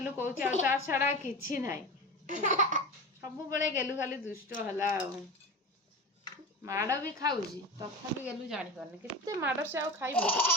कौच छड़ा कि ना सब बेले गेलु खाली दुष्ट है माड़ भी खाऊँ तथा भी गेलु जानी पारनी केते माड़ से आ खाइब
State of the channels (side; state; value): both; normal; correlation 0.29